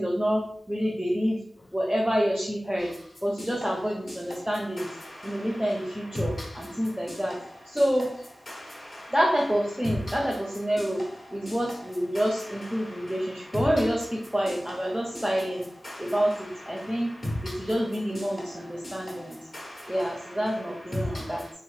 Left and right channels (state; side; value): normal; both; correlation 0.97